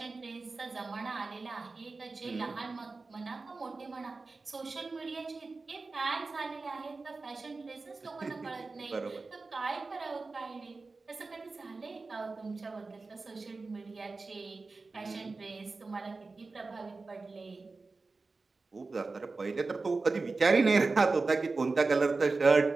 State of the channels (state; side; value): quieter; left; 3.8 dB